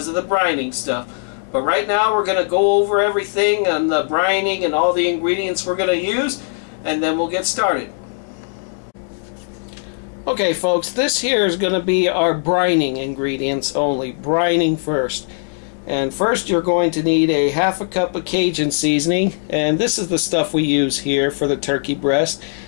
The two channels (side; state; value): right; silent; 66 dB below the other